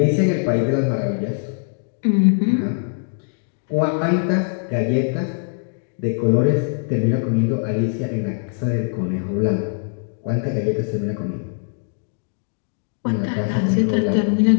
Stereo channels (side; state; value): right; silent; 65 dB below the other